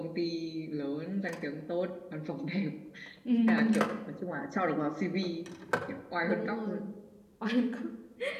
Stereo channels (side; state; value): both; identical; correlation 1.00